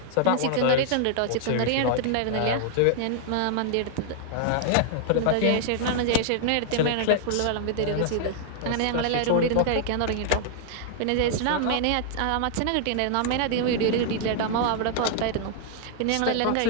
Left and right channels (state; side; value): different; both; correlation -0.01